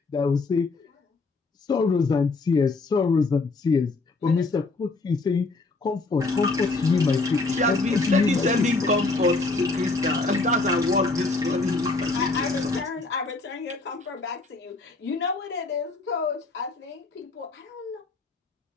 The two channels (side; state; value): right; quieter; 3.6 dB